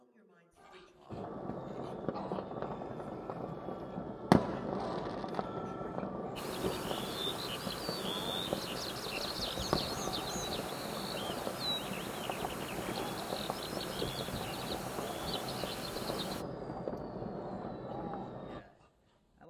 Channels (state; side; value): identical; both; correlation 1.00